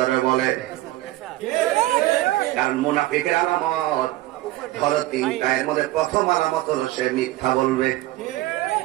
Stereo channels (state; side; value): quieter; left; 16.9 dB